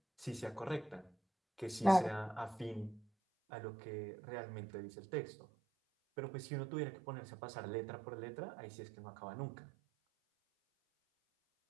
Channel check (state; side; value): drops out; left; at 3.1 s